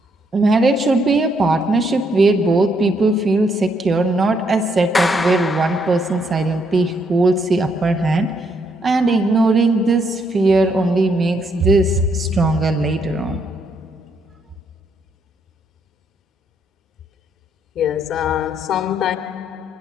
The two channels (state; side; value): normal; both; correlation 0.73